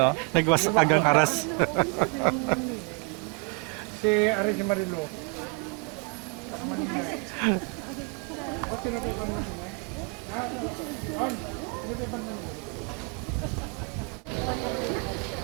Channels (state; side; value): quieter; left; 32.8 dB